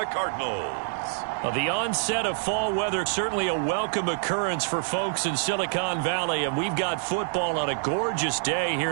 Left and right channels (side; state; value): left; silent; digital silence